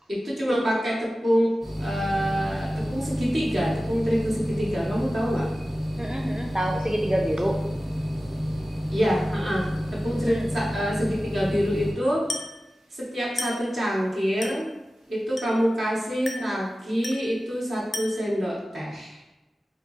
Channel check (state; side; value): normal; both; correlation 0.95